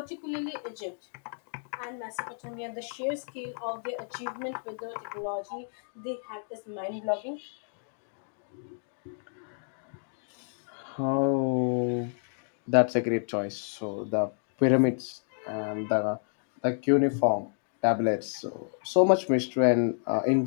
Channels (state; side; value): silent; right; 58 dB below the other